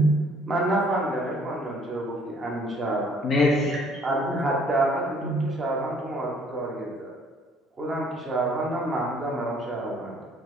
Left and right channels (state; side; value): normal; both; correlation 0.60